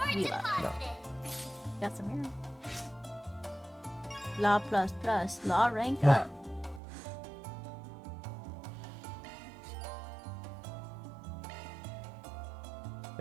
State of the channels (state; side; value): drops out; left; at 6.8 s